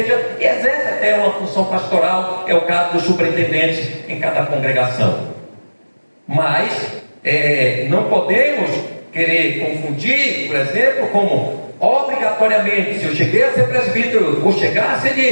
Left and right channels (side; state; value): both; inverted; correlation -1.00